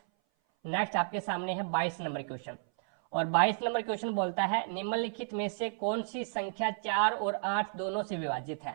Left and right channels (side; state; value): left; silent; 56 dB below the other